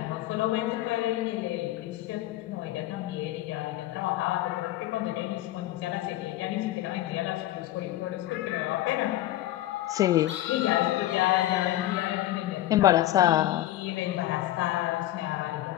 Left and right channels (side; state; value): right; quieter; 14.9 dB